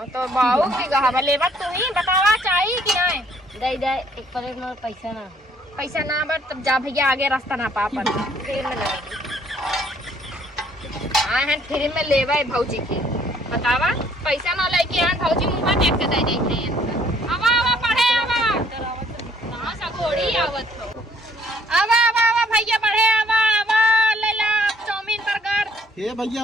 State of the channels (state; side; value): normal; both; correlation 0.63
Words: तो बाऊ बीघा हवा लेबा तू ही बतावा चाहिए कि नहीं। दे दे 1 प्लेट में पैसा ना। पैसा ना बर तब जा भैया आगे रास्ता ना पा पर फ्री में ना। हाँ है फ्री में लेबा भौजी के बतावा पैसा ना लेके आन भौजी मुंह देख के दे देते हैं। आवा पढ़े आवा कहां सा घोड़ी आवत हो। आवा भैया पढ़े आवा ले ला चाउमीन बर्गर। हे